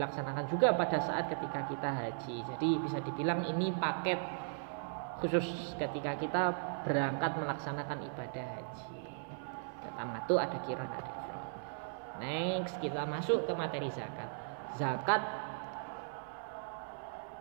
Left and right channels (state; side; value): silent; left; 53 dB below the other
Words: juga pada saat ketika kita haji. Jadi bisa dibilang ini paket khusus ketika kita berangkat melaksanakan ibadah haji. Tamattu, ada qiran, ada ifrad. Next, kita masuk ke materi zakat. Zakat